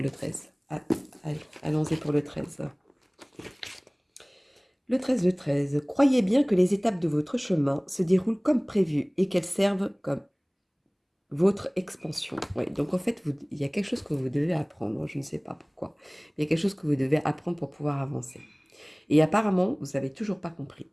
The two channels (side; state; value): both; identical; correlation 1.00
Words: le 13? Ah, allez, allons-y pour le 13. Le 13 de 13. Croyez bien que les étapes de votre chemin se déroulent comme prévu et qu'elles servent comme votre expansion. Oui, donc en fait, il y a quelque chose que vous devez apprendre. Je ne sais pas pourquoi. Il y a quelque chose que vous devez apprendre pour pouvoir avancer. Et apparemment, vous n'avez toujours pas compris.